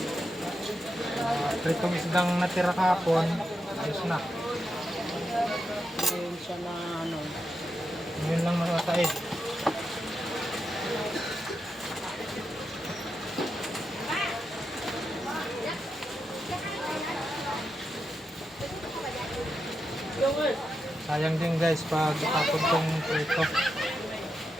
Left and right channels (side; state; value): both; normal; correlation 0.86